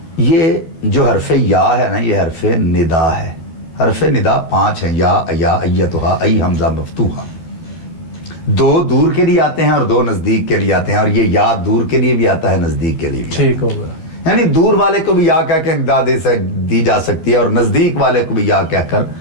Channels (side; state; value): right; late; 13 ms